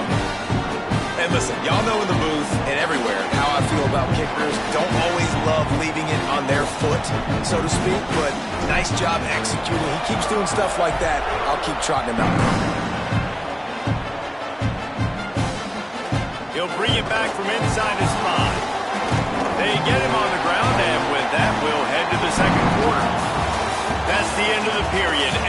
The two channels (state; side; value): identical; both; correlation 1.00